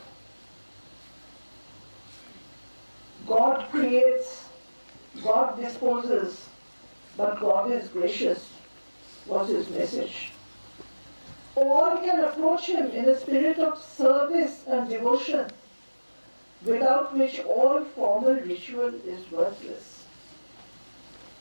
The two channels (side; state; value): both; inverted; correlation -1.00